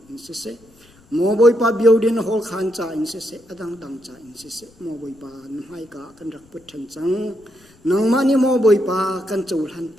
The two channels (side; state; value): left; noise; rumble, 29 dB below the sound